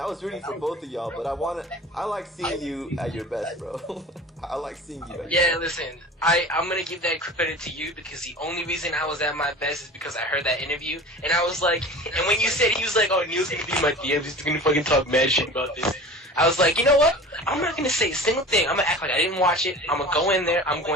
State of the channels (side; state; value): both; normal; correlation 0.38